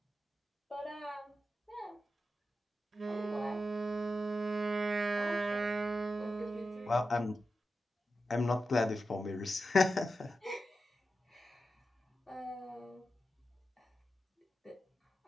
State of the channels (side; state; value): both; normal; correlation 0.90